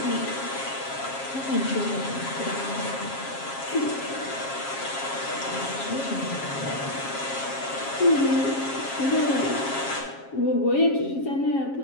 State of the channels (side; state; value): right; late; 7.4 ms